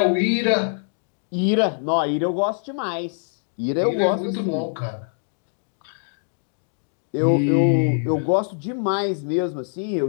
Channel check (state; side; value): silent; right; digital silence